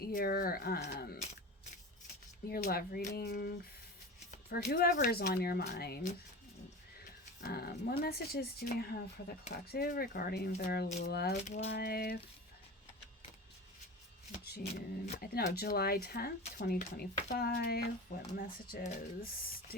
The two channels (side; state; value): both; normal; correlation 0.31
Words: love reading for whoever is on your mind. What messages do we have for the collective regarding their love life? July 10th, 2025. What messages